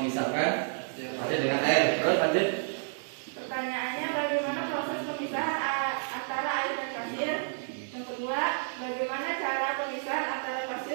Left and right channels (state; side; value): silent; left; digital silence